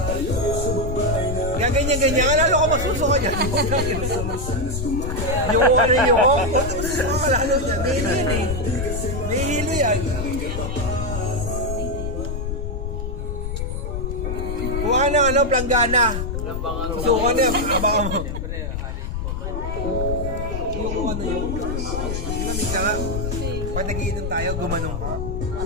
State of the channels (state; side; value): noise; left; rumble, 3 dB below the sound